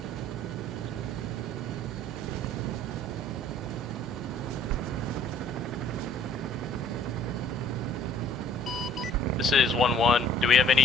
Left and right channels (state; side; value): normal; both; correlation 0.56